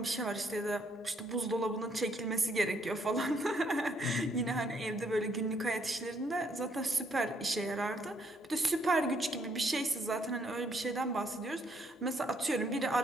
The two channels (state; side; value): normal; both; correlation 0.70